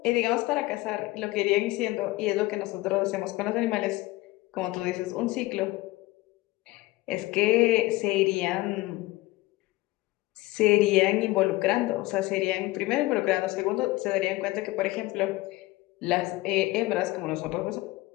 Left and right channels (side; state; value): right; quieter; 19.8 dB